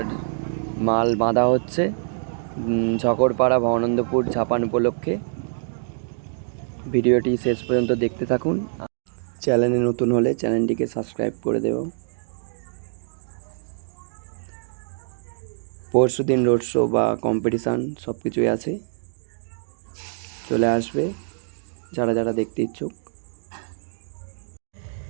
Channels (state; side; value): silent; left; digital silence